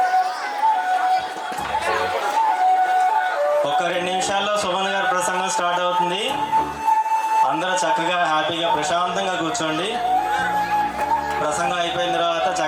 ఒక 2 నిమిషాల్లో సుమన్ గారి ప్రసంగం స్టార్ట్ అవుతుంది. అందరూ చక్కగా హ్యాపీగా ప్రశాంతంగా కూర్చోండి. ప్రసంగం అయిపోయిన తర్వాత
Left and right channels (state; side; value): identical; both; correlation 1.00